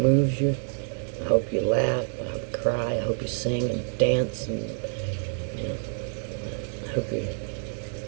moves you. I hope you laugh. I hope you cry. I hope you sing and dance. And I hope you're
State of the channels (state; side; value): silent; left; 57 dB below the other